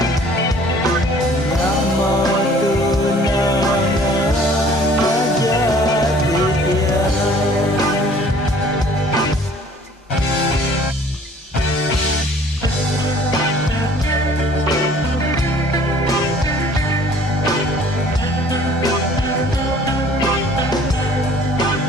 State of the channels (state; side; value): normal; both; correlation 0.53